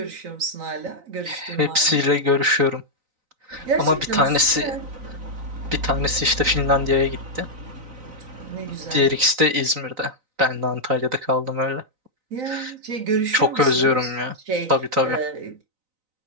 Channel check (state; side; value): late; left; 3.9 ms